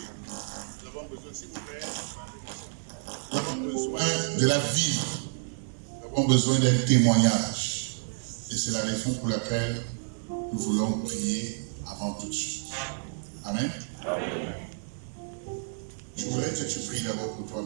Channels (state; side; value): silent; left; digital silence